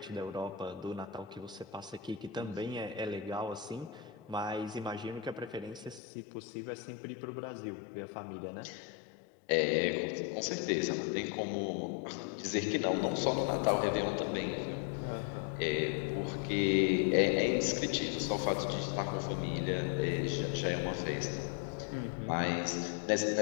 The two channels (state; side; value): drops out; right; at 6.0 s